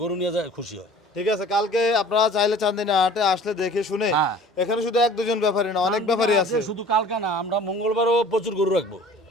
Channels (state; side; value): normal; both; correlation 0.47